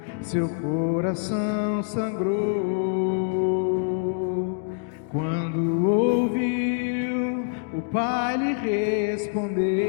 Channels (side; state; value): right; quieter; 36.1 dB